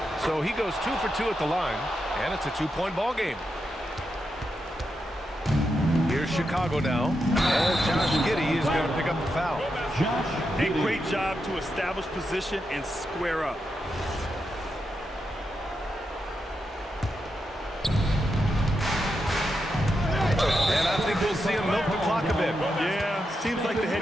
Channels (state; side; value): normal; both; correlation 0.86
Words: So he goes 2 for 2 at the line, and it's a 2-point ball game. Here's Chicago now, and Josh Giddy is going to pick up the foul. A great job to establish position and square up. And I think we'll see him milk the clock a bit. Yeah, seems like the